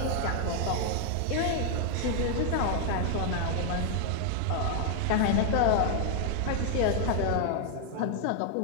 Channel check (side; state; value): both; different; correlation 0.00